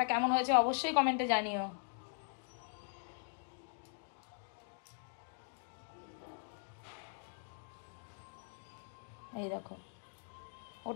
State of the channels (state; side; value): silent; right; digital silence